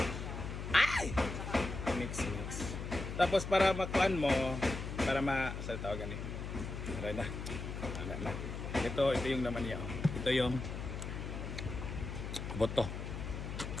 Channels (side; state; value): left; noise; hum, 6 dB below the sound